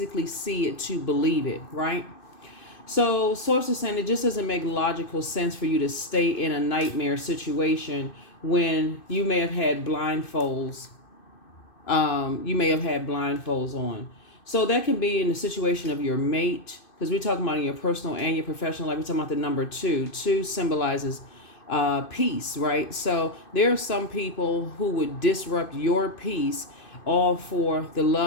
see it to believe it, right? So sources saying it just doesn't make logical sense for you to stay in a nightmare situation when you may have had blindfolds. On. So that can be in the situation of your mate, because we're talking about in your personal and your professional life. We're talking about the number two. Two symbolizes peace, right? So there are some people who would disrupt your peace all for the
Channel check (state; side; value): late; right; 2.5 ms